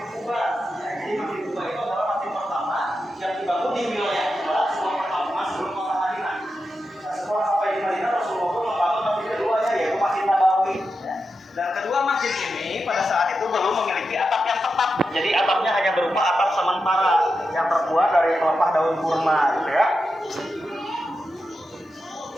Dan kedua, masjid ini pada saat itu belum memiliki atap yang tetap. Jadi atapnya hanya berupa atap sementara yang terbuat dari pelepah daun kurma, gitu ya.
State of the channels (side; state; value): both; normal; correlation 0.89